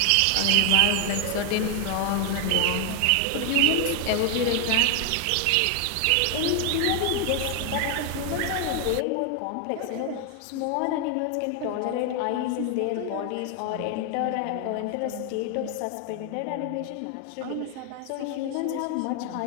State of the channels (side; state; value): both; different; correlation 0.00